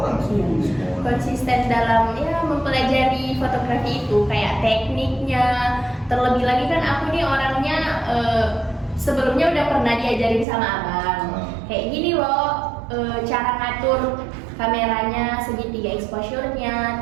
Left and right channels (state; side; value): drops out; left; at 10.5 s